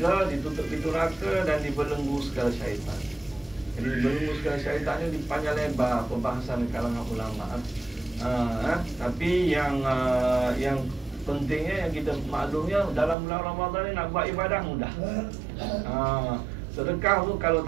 ditutup pintu neraka dan dibelenggu segala syaitan. Jadi dibelenggu segala syaitan ini dipanjang lebar pembahasan di kalangan ulama. Tapi yang pentingnya, yang kita maklumnya, dalam bulan Ramadan ni nak buat ibadah mudah. Sedekah tu, kalau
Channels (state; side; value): drops out; left; at 13.2 s